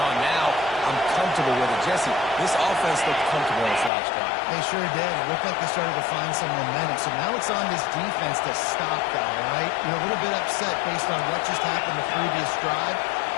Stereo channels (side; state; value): right; drops out; at 3.9 s